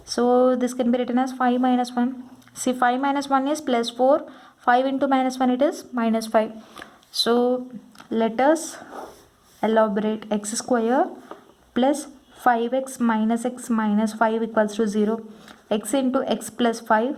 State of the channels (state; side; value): identical; both; correlation 1.00